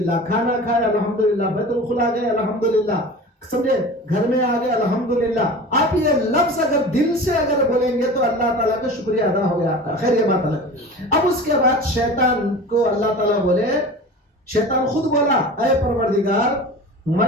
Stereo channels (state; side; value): normal; both; correlation 0.36